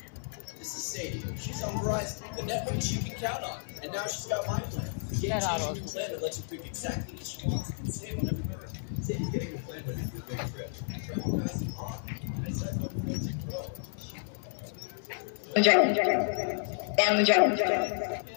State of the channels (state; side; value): silent; right; 57 dB below the other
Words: This is Sadie. She's on Verizon, the network you can count on. And now she's got my plan. The game-changing new plan that lets you pick exactly what she wants and save on every minute. Sadie's getting the plan ready for a big trip. Travel fast and on. I said no friends and grow. Down the drain.